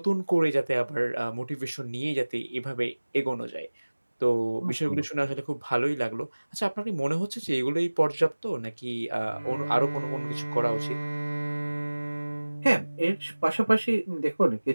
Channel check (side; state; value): both; inverted; correlation -1.00